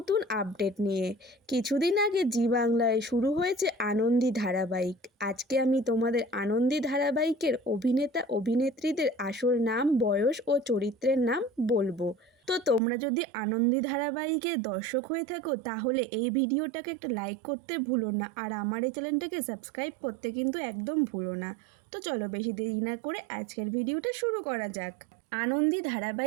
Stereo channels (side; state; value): left; drops out; at 12.8 s